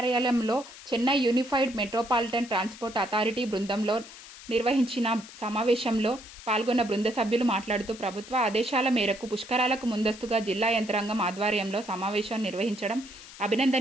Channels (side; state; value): left; noise; hiss, 17 dB below the sound